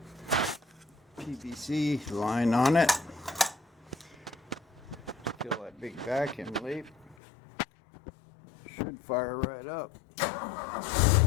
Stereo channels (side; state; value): right; drops out; at 7.2 s